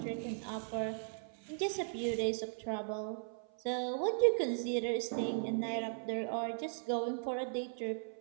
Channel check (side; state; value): left; silent; 53 dB below the other